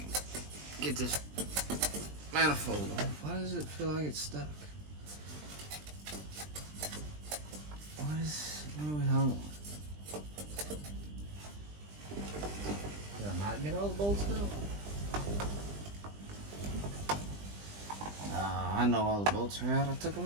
get this manifold off. Why does it feel like it's stuck? What are we hung on? Did I not get all the bolts out? I know all the bolts are out. I took them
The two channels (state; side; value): late; left; 20 ms